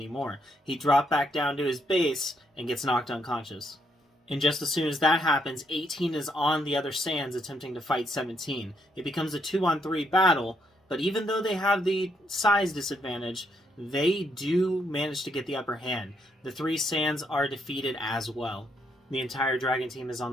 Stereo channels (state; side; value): normal; both; correlation 0.74